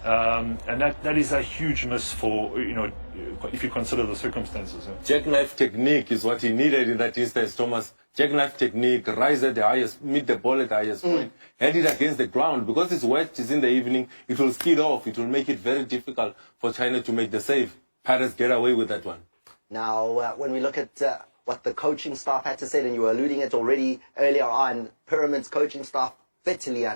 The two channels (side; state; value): both; inverted; correlation -1.00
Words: And that is a huge miss for, if you consider the circumstances. Jackknife technique is what he needed in that instance, Thomas. Jackknife technique, rise at the highest, meet the ball at the highest point, head it against the ground. Because it's wet, it's in the evening, it will skid off. It will make it very difficult for China to make the save. Pirates get away with that one. Now, when we look at what the coaching staff had to say, and you were alluding it already earlier on, Pyramid's coaching staff bitterly